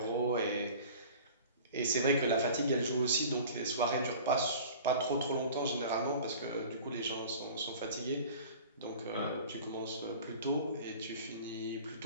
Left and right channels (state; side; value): inverted; both; correlation -0.42